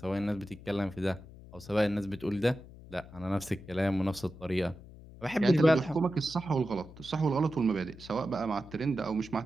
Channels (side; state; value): left; noise; hum, 18 dB below the sound